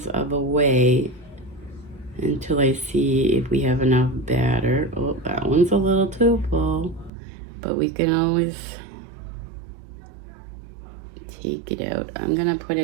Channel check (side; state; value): left; drops out; at 7.1 s